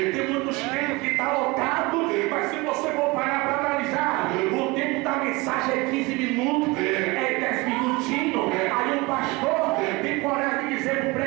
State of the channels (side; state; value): left; quieter; 24.2 dB